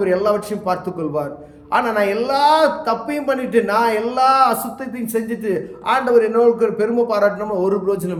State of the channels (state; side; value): identical; both; correlation 1.00